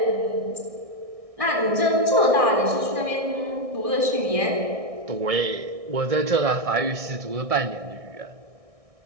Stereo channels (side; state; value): left; late; 1.6 ms